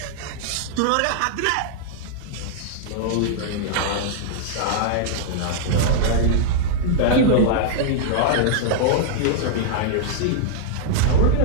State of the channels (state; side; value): different; both; correlation -0.01